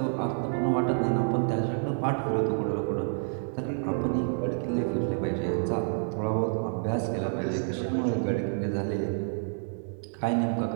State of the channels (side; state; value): left; silent; digital silence